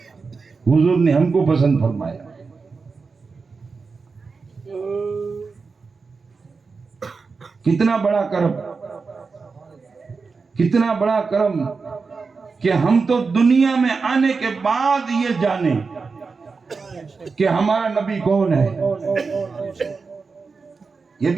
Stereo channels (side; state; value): left; quieter; 4.6 dB